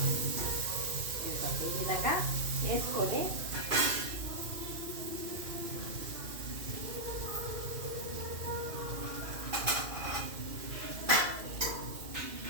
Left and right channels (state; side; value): late; left; 2.5 ms